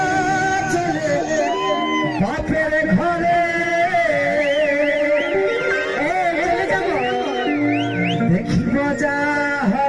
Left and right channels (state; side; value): identical; both; correlation 1.00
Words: চলে বাপের ঘরে, চলে যাব দেখিব যা